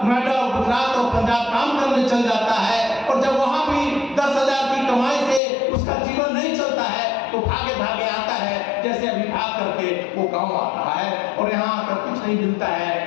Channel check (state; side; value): drops out; right; at 5.4 s